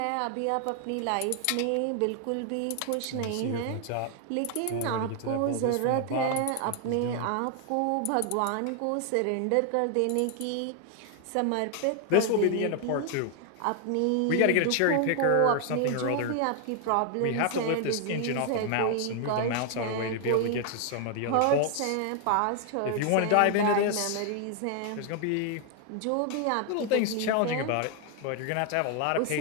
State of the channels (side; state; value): both; different; correlation 0.00